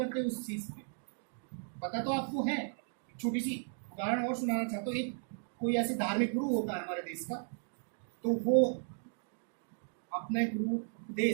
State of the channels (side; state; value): left; silent; 54 dB below the other